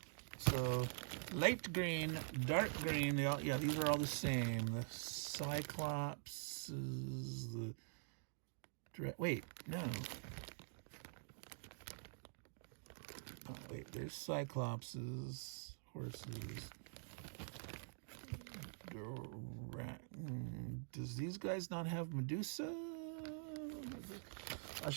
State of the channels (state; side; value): silent; left; digital silence